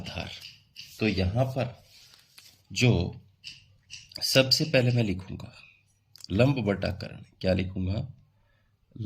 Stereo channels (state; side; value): identical; both; correlation 1.00